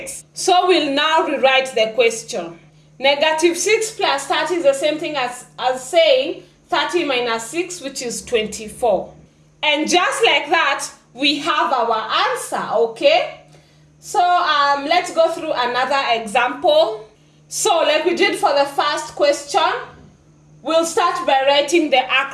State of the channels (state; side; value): identical; both; correlation 1.00